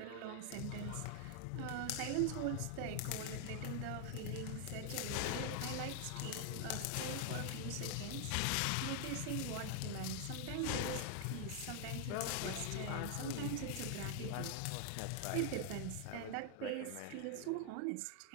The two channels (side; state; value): both; different; correlation 0.00